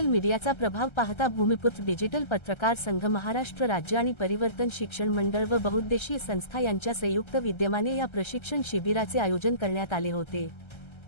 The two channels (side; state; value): right; late; 1.3 ms